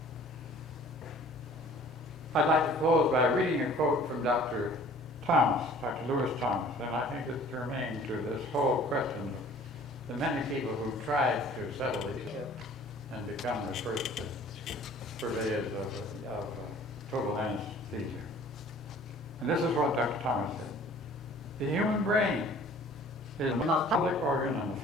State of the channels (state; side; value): normal; both; correlation 0.50